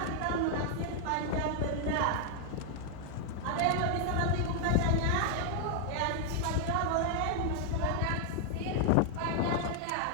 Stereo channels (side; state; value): both; different; correlation 0.00